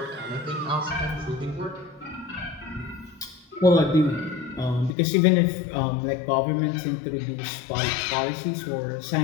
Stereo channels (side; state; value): right; drops out; at 4.9 s